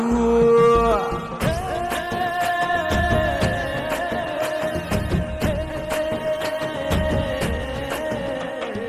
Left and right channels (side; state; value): both; identical; correlation 1.00